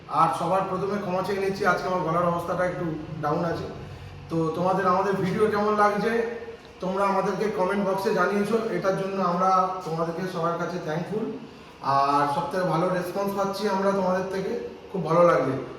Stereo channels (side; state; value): both; identical; correlation 1.00